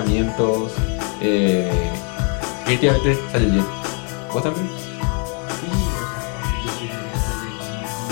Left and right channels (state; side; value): quieter; right; 38.3 dB